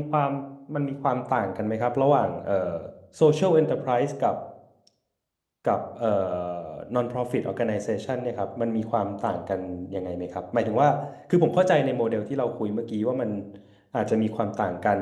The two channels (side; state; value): both; identical; correlation 1.00